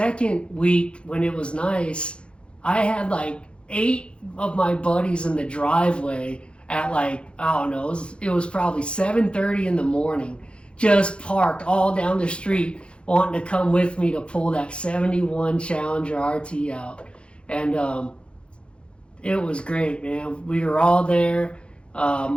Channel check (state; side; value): late; right; 0.057 ms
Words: week when it was nice, I had like 8 of my buddies in the driveway at like, I don't know, it was probably 7:30 in the morning, just parked all down the street, wanting to come with me to pull that 71 Challenger RT out. And it was great, man. We were all there.